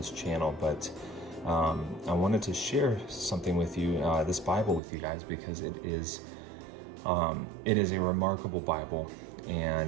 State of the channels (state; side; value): drops out; left; at 4.8 s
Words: channel, but I wanted to share something with you, this Bible with you guys, because it is a remarkable Bible,